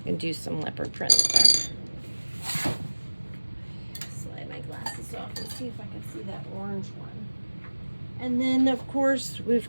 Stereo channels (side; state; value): both; inverted; correlation -1.00